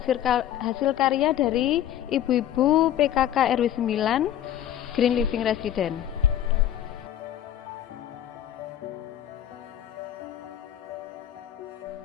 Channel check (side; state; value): right; quieter; 11.3 dB